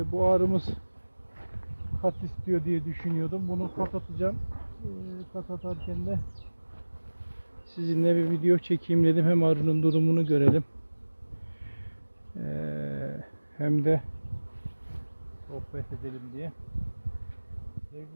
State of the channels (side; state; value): both; inverted; correlation -1.00